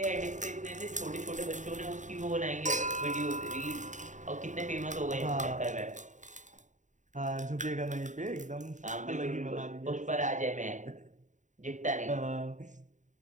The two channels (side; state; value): left; late; 0.36 ms